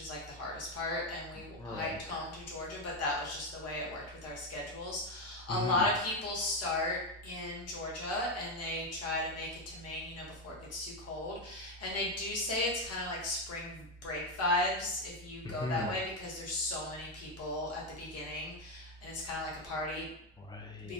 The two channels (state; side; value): normal; both; correlation 0.08